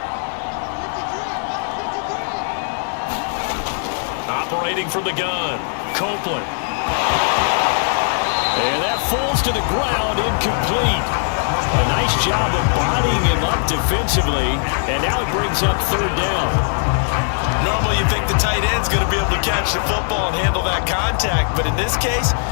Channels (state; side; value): silent; right; digital silence